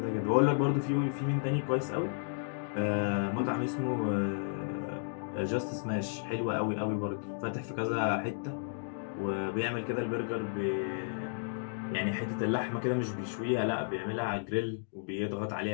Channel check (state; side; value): silent; right; digital silence